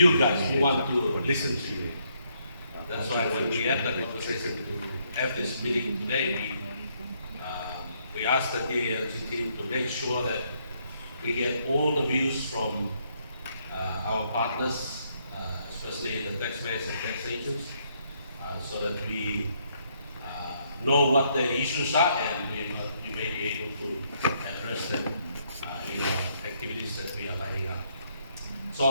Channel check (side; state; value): both; inverted; correlation -0.72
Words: guys who want to listen to you. That's why when we had the conversation to have this meeting today, we asked the KLG team to make sure that we get all the views from our partners, especially the taxpayers and tax agents, so that we know what the issues are and we may be able to address them in our activities that we are lining up. So